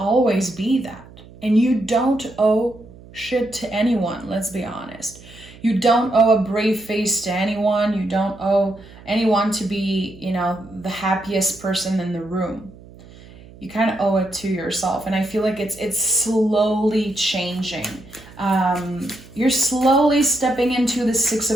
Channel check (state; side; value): noise; right; hum, 20 dB below the sound